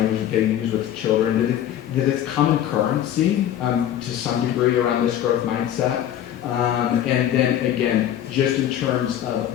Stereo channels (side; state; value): right; quieter; 11.1 dB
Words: that they use with children, that it's common currency to some degree around this growth mindset. And then again, just in terms of